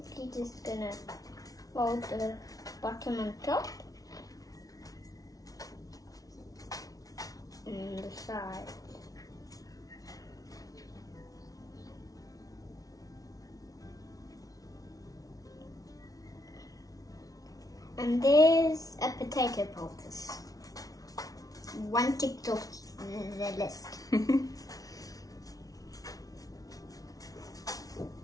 just gonna fold the bottom and top and the sides. And there's a potato poultice. One ticked off the list.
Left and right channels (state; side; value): late; right; 0.18 ms